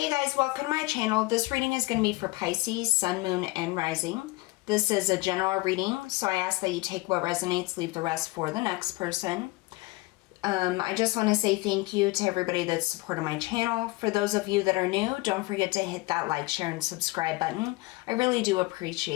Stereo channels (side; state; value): right; quieter; 22.4 dB